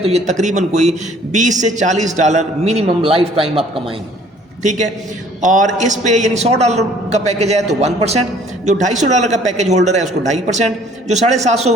ये तकरीबन कोई $20 से $40 मिनिमम लाइफ टाइम आप कमाएंगे। ठीक है। और इस पे यानी $100 का पैकेज है तो 1%, जो $250 का पैकेज होल्डर है उसको 2.5%, जो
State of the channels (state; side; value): normal; both; correlation 0.56